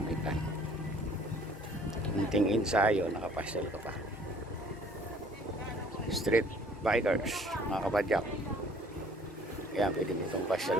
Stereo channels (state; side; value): normal; both; correlation 0.55